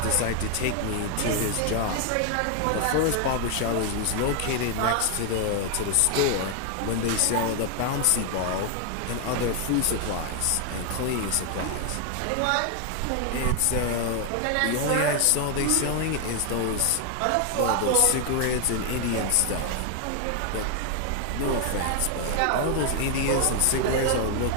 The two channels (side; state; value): both; different; correlation 0.00